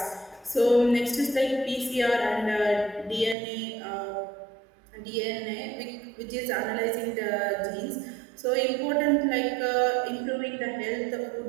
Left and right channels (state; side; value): drops out; left; at 3.4 s